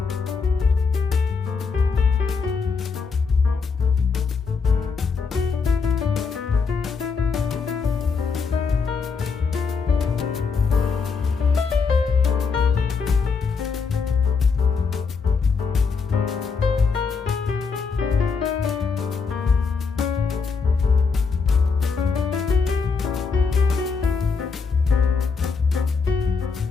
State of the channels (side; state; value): right; quieter; 5.1 dB